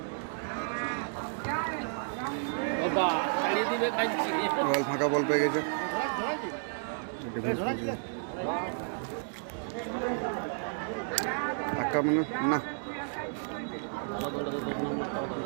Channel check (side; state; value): left; silent; 57 dB below the other